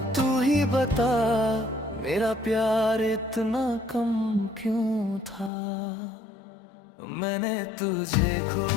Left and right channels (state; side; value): drops out; right; at 5.5 s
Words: तू ही बता मेरा प्यार इतना कम क्यों था। मैंने तुझे